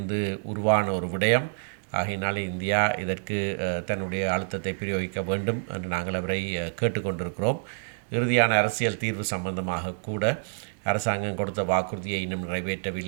உருவான ஒரு விடயம். ஆகையினாலே இந்தியா இதற்கு தன்னுடைய அழுத்தத்தை பிரயோகிக்க வேண்டும் என்று நாங்கள் அவரை கேட்டுக்கொண்டிருக்கிறோம். இறுதியான அரசியல் தீர்வு சம்பந்தமாக கூட அரசாங்கம் கொடுத்த வாக்குறுதியை இன்னும்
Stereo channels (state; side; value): silent; left; digital silence